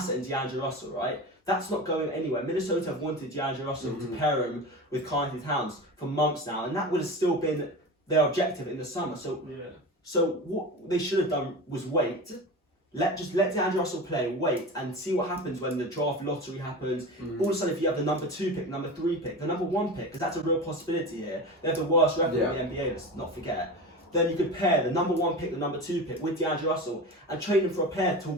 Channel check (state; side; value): normal; both; correlation 0.29